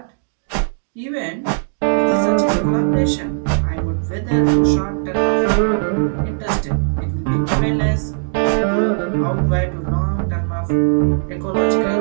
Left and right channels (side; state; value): left; silent; digital silence